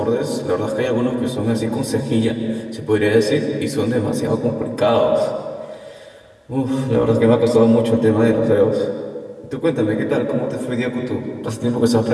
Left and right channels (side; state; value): both; identical; correlation 1.00